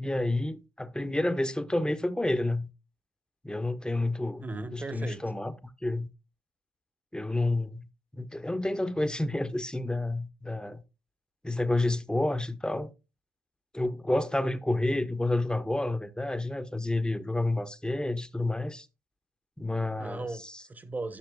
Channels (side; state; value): both; normal; correlation 0.96